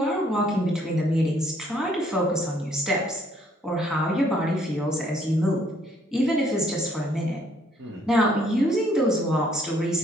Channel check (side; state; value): both; normal; correlation 0.65